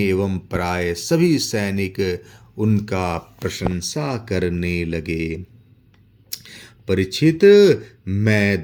प्राय सभी सैनिक उनका प्रशंसा करने लगे। परीक्षित, मैं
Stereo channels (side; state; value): both; identical; correlation 1.00